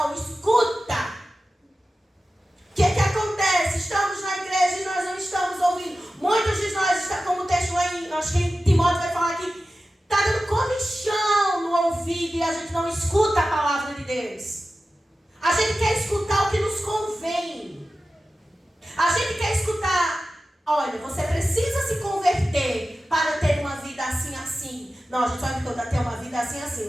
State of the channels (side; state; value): both; normal; correlation 0.94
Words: escuta. O que acontece? Estamos na igreja e nós não estamos ouvindo. Muitos de nós, como o texto aí, acho que Timóteo vai falar aqui, está dando comichão no ouvido e a gente não escuta a palavra de Deus. A gente quer escutar o que nos convém. A gente quer escutar, olha, você precisa se converter para ter uma vida assim, assim. Não, a gente só vai ter uma vida assim, assim.